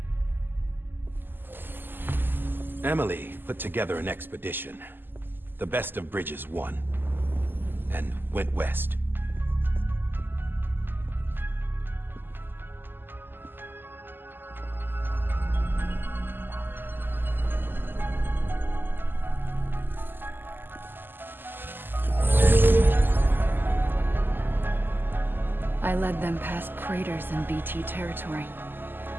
Emily put together an expedition. The best of Bridges won, and went west. I led them past craters in BT territory.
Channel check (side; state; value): left; late; 0.094 ms